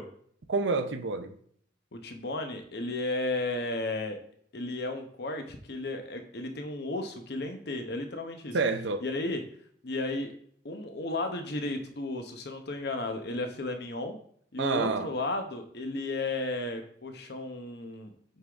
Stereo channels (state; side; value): normal; both; correlation 0.08